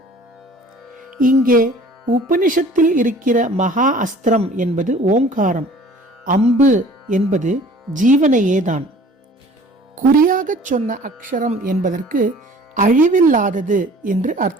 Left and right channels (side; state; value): both; normal; correlation 0.49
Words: இங்கே உபனிஷத்தில் இருக்கிற மகா அஸ்திரம் என்பது ஓங்காரம், அம்பு என்பது ஜீவனையேதான். குறியாகச் சொன்ன அக்ஷரம் என்பதற்கு அழிவில்லாதது என்று